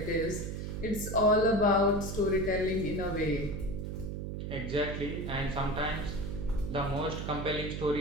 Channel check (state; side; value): noise; right; hum, 5 dB below the sound